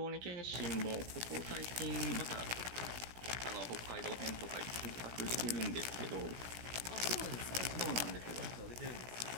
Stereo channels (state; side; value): late; left; 17 ms